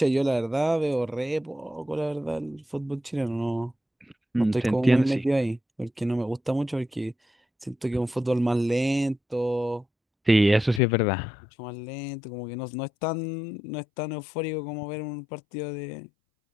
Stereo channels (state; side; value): drops out; right; at 10.8 s